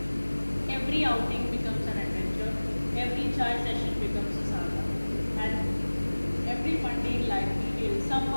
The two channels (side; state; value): both; inverted; correlation -1.00